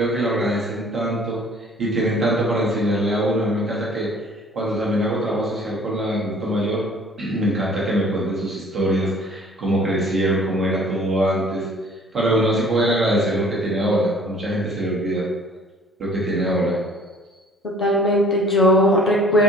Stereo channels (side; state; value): both; normal; correlation 0.53